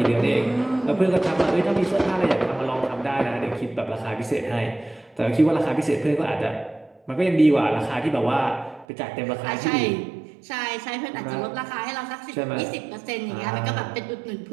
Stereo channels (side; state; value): left; drops out; at 8.8 s